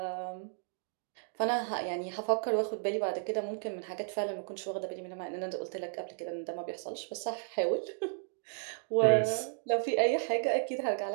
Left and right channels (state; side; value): silent; left; digital silence